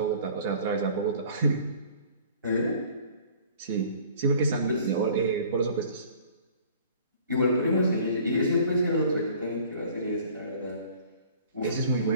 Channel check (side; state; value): both; inverted; correlation -0.50